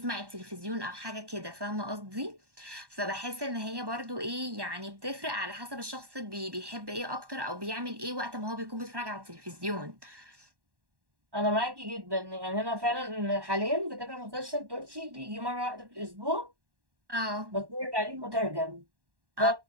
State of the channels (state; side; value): late; left; 1.1 ms